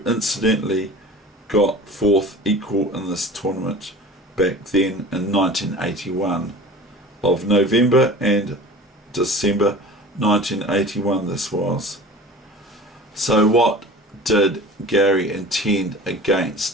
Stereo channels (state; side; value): normal; both; correlation 0.40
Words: incidentally got fourth equal in this tournament back then in 1981, of November and December 1981 this was. So what did Garry intend